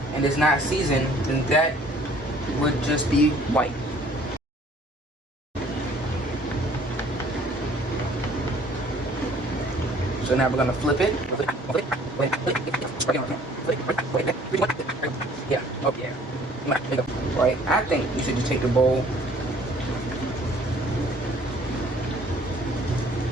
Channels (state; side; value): normal; both; correlation 0.55